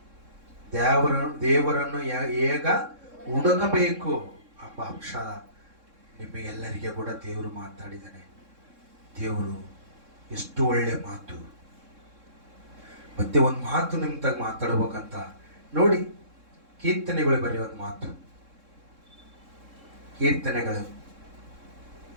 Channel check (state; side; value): late; left; 3.7 ms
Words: ಹುಡುಕಬೇಕು ಎಂಬ ಅಂಶ ನಿಮಗೆಲ್ಲರಿಗೆ ಕೂಡ ದೇವರು ಮಾತಾಡಿದ್ದಾನೆ. ದೇವರು ಎಷ್ಟು ಒಳ್ಳೆ ಮಾತು. ಮತ್ತೆ ಒಂದು ಮಾತು ನಿಮ್ಮ ತಾಗ ಮಾತಾಡ್ಬೇಕಂತ ನೋಡಿ, ಕೀರ್ತನೆಗಳು ಬರೀ ಒಂದು ಮಾತು. ಕೀರ್ತನೆಗಳು